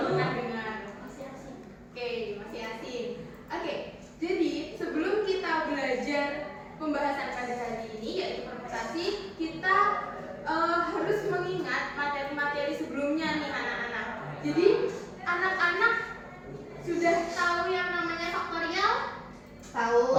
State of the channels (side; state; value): both; identical; correlation 1.00